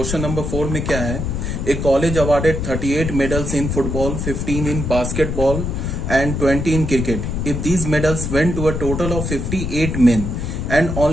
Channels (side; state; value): left; noise; rumble, 3 dB below the sound